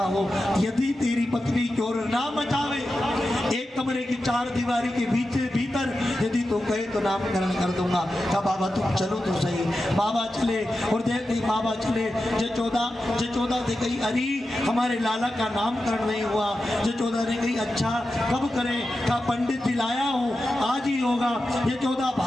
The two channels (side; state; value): both; normal; correlation 0.91